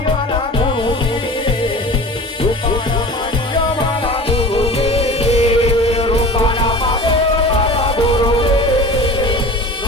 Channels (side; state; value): both; normal; correlation 0.37